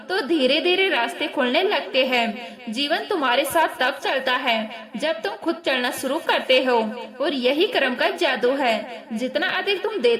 तो धीरे धीरे रास्ते खुलने लगते हैं। जीवन तुम्हारे साथ तब चलता है जब तुम खुद चलना शुरू करते हो, और यही कर्म का जादू है। जितना अधिक तुम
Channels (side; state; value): both; identical; correlation 1.00